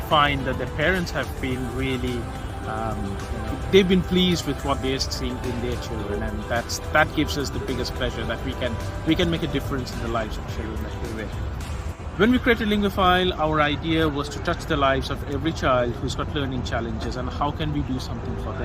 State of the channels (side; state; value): both; identical; correlation 1.00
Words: find that the parents have been really they've been pleased with what they're seeing in their children, and that gives us the biggest pleasure that we can make a difference in the lives of children that we're with. When we created Linguaphile, our idea was to touch the lives of every child who's got learning challenges, and how can we do something for